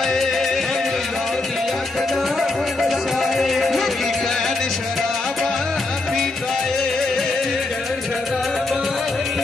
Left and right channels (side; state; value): right; quieter; 3.2 dB